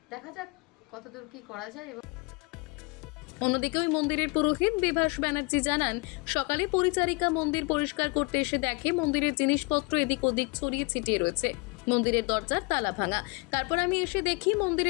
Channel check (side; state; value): right; quieter; 28.7 dB